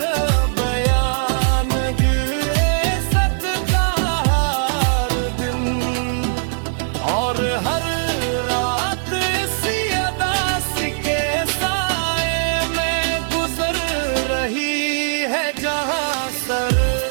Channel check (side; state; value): left; silent; digital silence